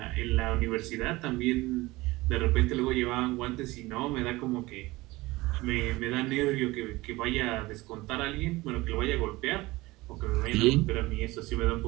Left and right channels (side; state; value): left; quieter; 20.4 dB